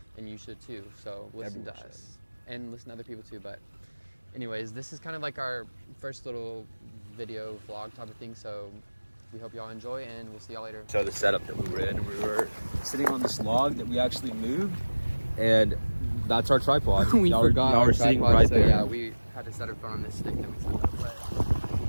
and you should too. So listen Everyone to should. us and listen to other people too. But anyways, this is kind of like our first little video vlog type of thing. So we hope y'all enjoy, and we'll see y'all later. So the setup that we were in, we were sitting on this log that we actually moved, and that's our tripod. We y'all forgot y'all our were sitting tripod, right so there. we had to set our phone on this stick that we set up.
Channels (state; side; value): inverted; both; correlation -1.00